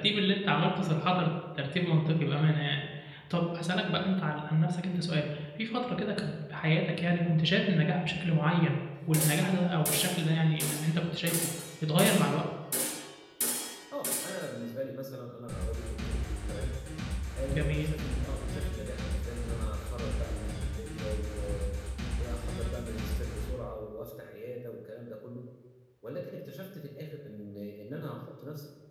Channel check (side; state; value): both; identical; correlation 1.00